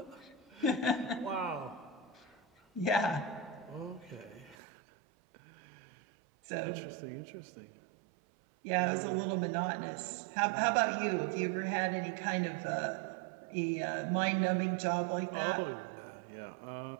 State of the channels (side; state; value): left; drops out; at 4.5 s